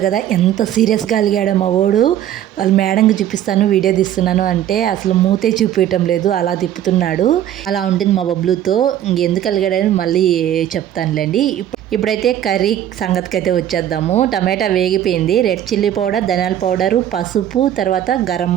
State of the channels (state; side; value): quieter; left; 11.2 dB